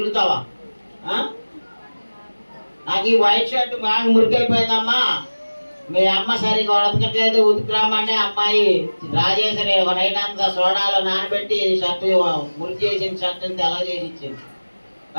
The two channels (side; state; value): both; inverted; correlation -1.00